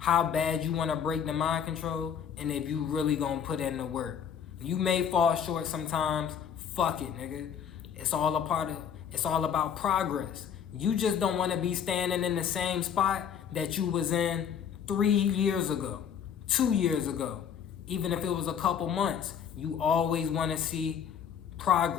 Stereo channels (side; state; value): right; quieter; 8.0 dB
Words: bad you wanna break the mind control and if you really gonna put in the work. You may fall short sometimes. Fuck it, nigga. It's all about progress. You just don't wanna be standing in the same spot that you was in 3 years ago, 2 years ago. Even if it was a couple months, you always wanna see